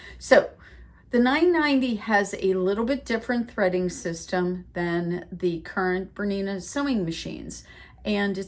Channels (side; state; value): both; identical; correlation 1.00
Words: So the 990 has a little bit different threading system than the current Bernina sewing machines. And